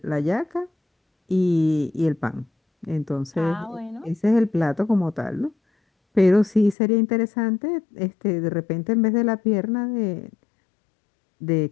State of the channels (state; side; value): drops out; right; at 6.8 s